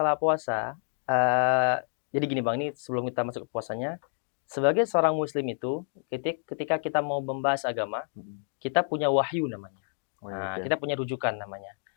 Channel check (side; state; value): right; silent; digital silence